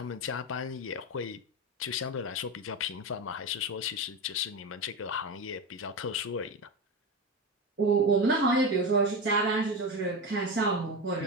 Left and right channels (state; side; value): normal; both; correlation 0.19